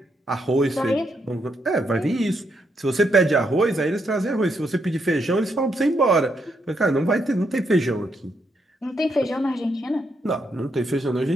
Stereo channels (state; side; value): normal; both; correlation 0.78